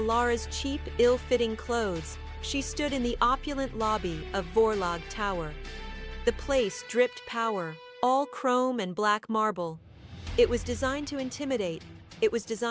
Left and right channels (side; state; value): both; identical; correlation 1.00